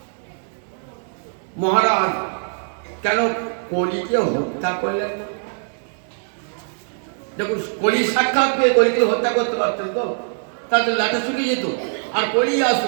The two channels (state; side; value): silent; left; digital silence